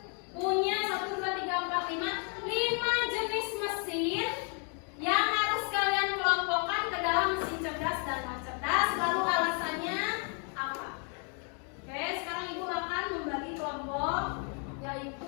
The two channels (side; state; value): right; quieter; 39.8 dB